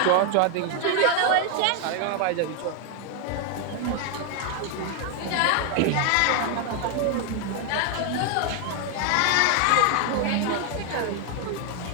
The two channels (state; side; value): different; both; correlation 0.01